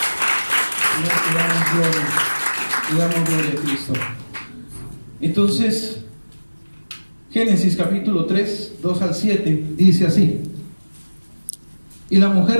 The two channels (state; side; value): inverted; both; correlation -1.00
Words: Le damos gloria a Cristo. Entonces, Génesis capítulo 3, 2 al 7, dice así: y la mujer